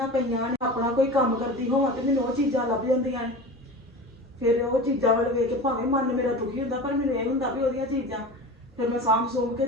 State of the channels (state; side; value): normal; both; correlation 0.33